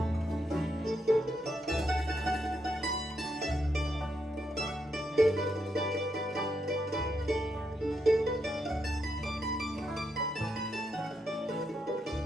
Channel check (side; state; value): both; normal; correlation 0.80